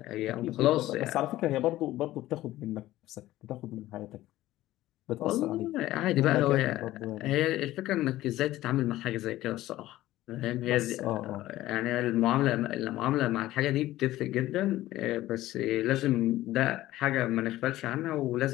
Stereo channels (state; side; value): quieter; right; 15.6 dB